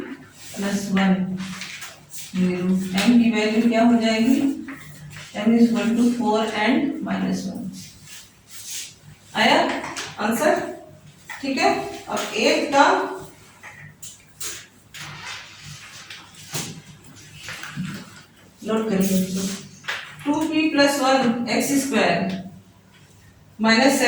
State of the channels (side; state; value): both; identical; correlation 1.00